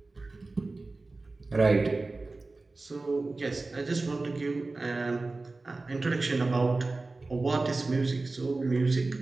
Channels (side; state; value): left; quieter; 3.4 dB